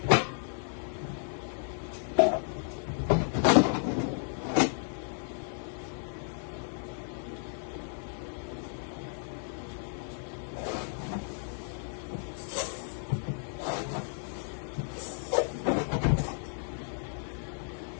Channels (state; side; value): silent; right; 56 dB below the other